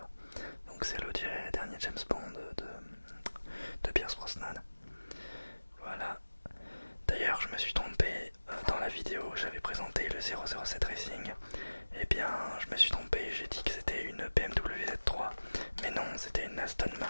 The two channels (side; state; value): both; inverted; correlation -1.00